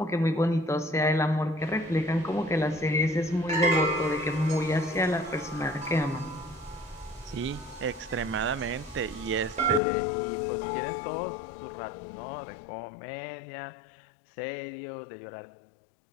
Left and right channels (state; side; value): drops out; right; at 9.8 s